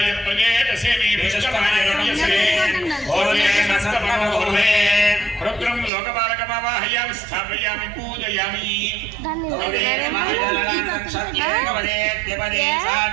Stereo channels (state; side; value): drops out; left; at 5.9 s